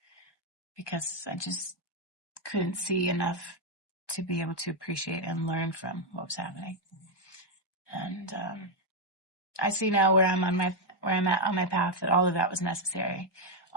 because I just couldn't see enough to be able to appreciate and learn from what was happening. And I see now where I'm at on my path, that all of that was necessary.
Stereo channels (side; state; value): right; late; 1.2 ms